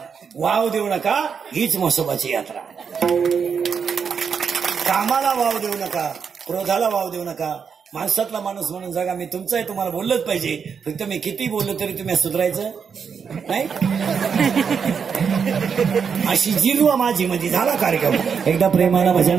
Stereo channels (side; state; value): left; quieter; 6.4 dB